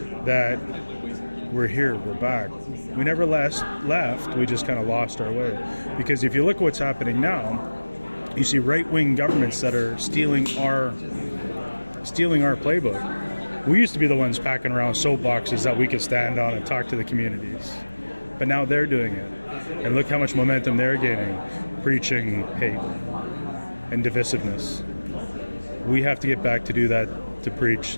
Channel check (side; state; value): both; inverted; correlation -1.00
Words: that we're here, we're back. We never left, we just kind of lost our way. Because if you look at what's happening now, you see right-wing governments that are stealing our playbook. We used to be the ones packing around soapboxes that we could stand on and talk to the communities. But now they're doing it. And look how much momentum they're gaining, preaching hate and divisiveness. We have to get back to do that, to preach